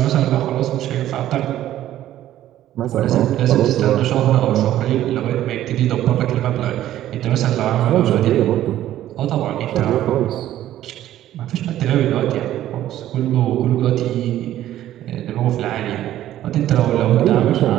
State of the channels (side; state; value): left; quieter; 13.0 dB